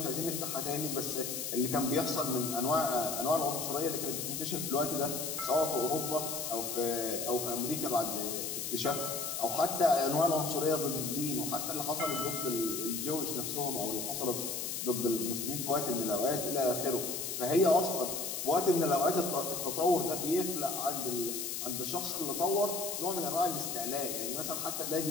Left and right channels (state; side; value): noise; left; hiss, 3 dB below the sound